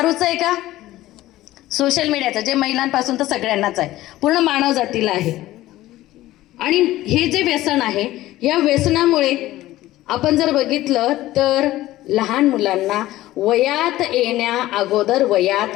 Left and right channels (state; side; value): quieter; right; 15.9 dB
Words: आहे का? सोशल मीडियाचं, जे महिलांपासून तर सगळ्यांनाच आहे, पूर्ण मानव जातीला आहे. आणि हे जे व्यसन आहे, या व्यसनामुळे आपण जर बघितलं तर लहान मुलांना वयात येण्या अगोदर